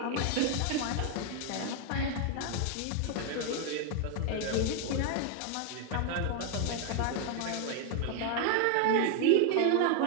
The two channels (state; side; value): different; both; correlation 0.01